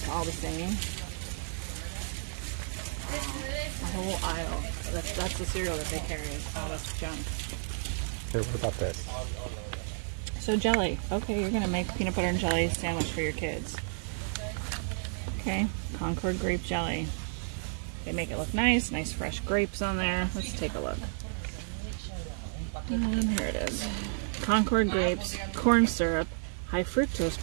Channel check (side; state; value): left; silent; 57 dB below the other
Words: all the same. A whole aisle. That's the cereal that they carry. Oh, that's junk. Here, what about this? So jelly. Okay, you're gonna make peanut butter and jelly sandwich for your kids. Okay, Concord grape jelly. They make it look nice, nice fresh grapes on there. Let's take a look. And here it is. Concord grapes, corn syrup, high fructose